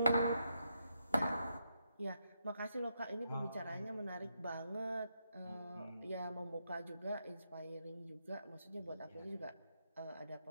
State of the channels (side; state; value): both; inverted; correlation -0.81